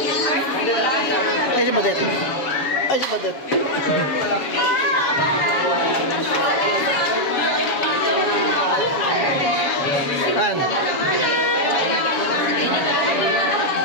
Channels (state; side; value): late; right; 7.1 ms